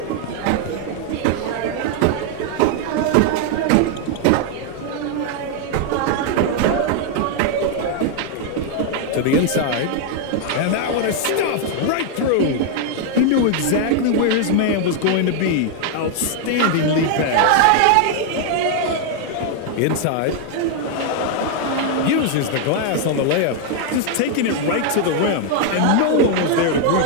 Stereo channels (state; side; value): different; both; correlation 0.00